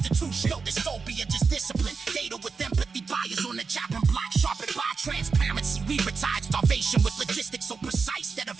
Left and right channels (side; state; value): left; quieter; 5.0 dB